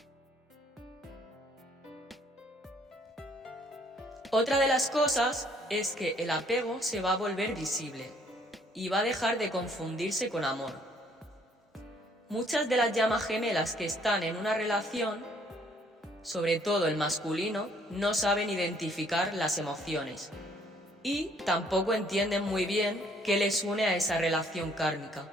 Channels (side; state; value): both; normal; correlation 0.63